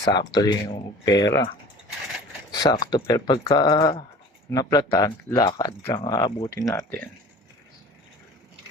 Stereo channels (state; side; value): normal; both; correlation 0.43